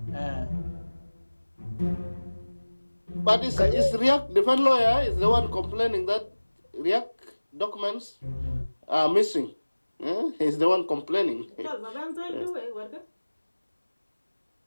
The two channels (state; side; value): inverted; both; correlation -1.00